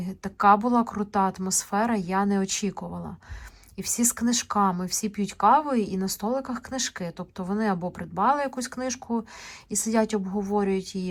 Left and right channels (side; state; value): both; identical; correlation 1.00